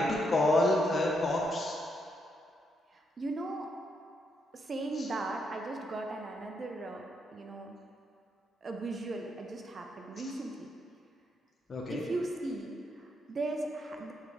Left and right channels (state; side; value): normal; both; correlation 0.78